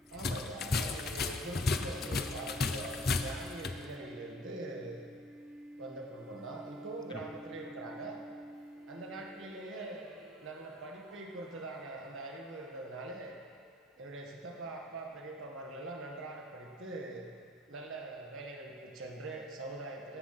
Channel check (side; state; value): both; normal; correlation 0.54